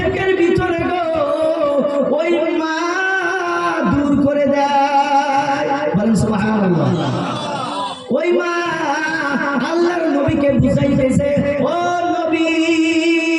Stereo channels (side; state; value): both; identical; correlation 1.00